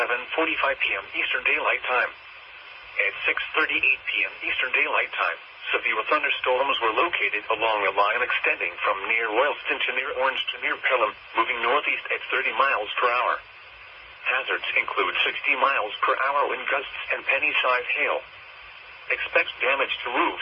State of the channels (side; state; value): both; identical; correlation 1.00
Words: p.m. Eastern Daylight Time. At 6:38 p.m. Eastern Daylight Time, severe thunderstorms were located along a line extending from near Royalston to near Orange to near Pelham, moving northeast at 30 miles per hour. Hazards include 60 miles per hour wind gusts and penny-sized hail. Expect damage to